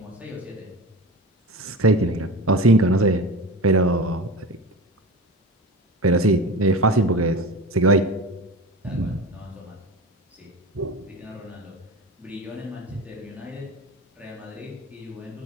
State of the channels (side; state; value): both; normal; correlation 0.29